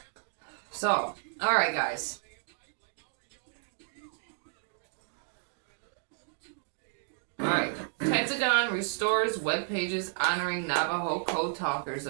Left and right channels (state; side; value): silent; left; digital silence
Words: So, all right, guys. All right. Pentagon restores web pages honoring Navajo code talkers